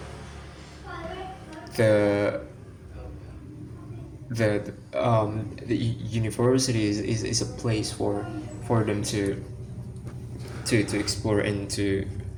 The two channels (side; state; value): both; identical; correlation 1.00